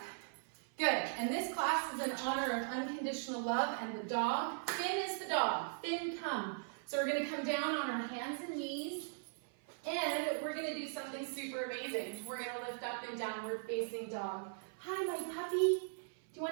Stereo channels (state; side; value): silent; left; 52 dB below the other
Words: Good, and this class is in honor of unconditional love and the dog. Finn is the dog. Finn, come. So we're gonna come down on our hands and knees, and we're gonna do something super amazing. We're gonna lift up in downward facing dog. Hi, my puppy. Do you